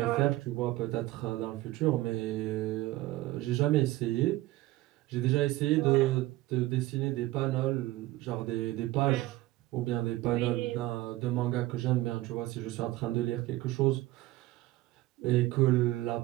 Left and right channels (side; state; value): left; quieter; 17.6 dB